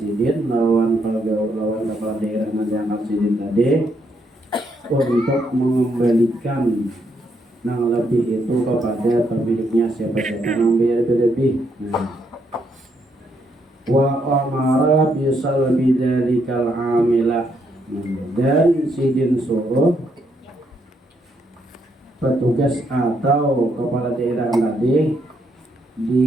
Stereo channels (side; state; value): both; normal; correlation 0.76